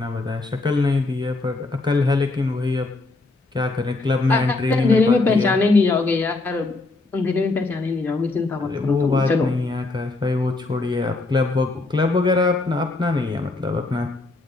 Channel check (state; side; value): quieter; right; 3.3 dB